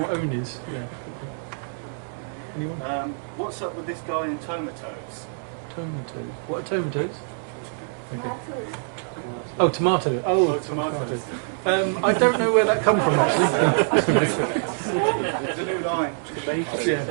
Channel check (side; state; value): left; silent; 62 dB below the other